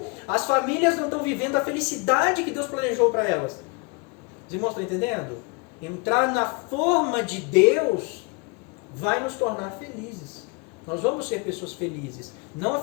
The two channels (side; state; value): right; quieter; 30.2 dB